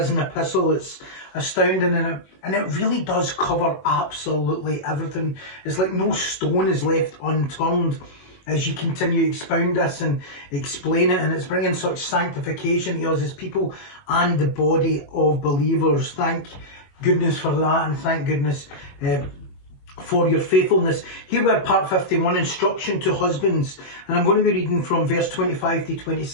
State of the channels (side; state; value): right; late; 21 ms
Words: epistle. It's astounding and it really does cover absolutely everything. It's like no stone is left unturned as you continue to expound this and explain it, and it's bringing such sanctification to us as people and the body of believers. Thank goodness for that, and thank goodness for your faithfulness. Here we are, part 51, instruction to husbands, and I'm going to be reading from verse 25 to